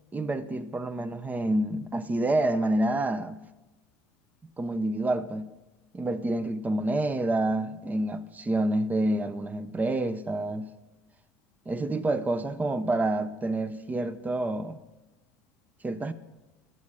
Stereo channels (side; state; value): both; normal; correlation 0.86